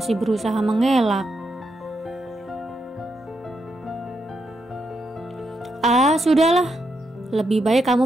berusaha mengelak. Sudahlah. Lebih baik kamu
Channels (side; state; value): both; normal; correlation 0.82